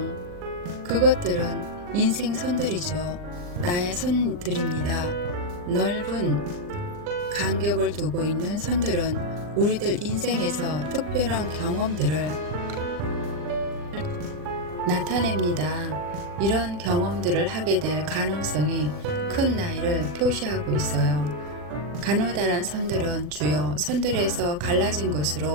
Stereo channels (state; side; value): late; left; 40 ms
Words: 그것들은 인생 선들이죠. 나의 선들입니다. 넓은 간격을 두고 있는 선들은 우리들 인생에서 특별한 경험들을 나타냅니다. 이런 경험들을 하게 될 가능성이 큰 나이를 표시하고 있어요. 가느다란 선들은 주요 선들에서 갈라진